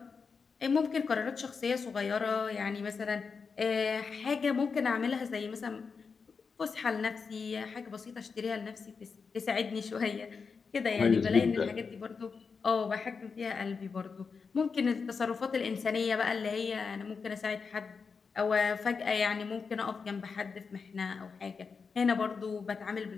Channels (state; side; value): quieter; right; 5.3 dB